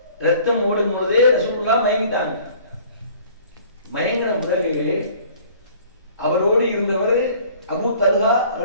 ரத்தம் ஓடும் போதே ரசூலுல்லாஹ் மயங்கிட்டாங்க. மயங்கின பிறகு அவரோடு இருந்தவர் அபூ தல்ஹா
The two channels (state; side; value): inverted; both; correlation -0.51